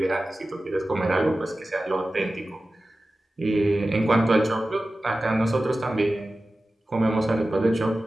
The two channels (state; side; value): normal; both; correlation 0.95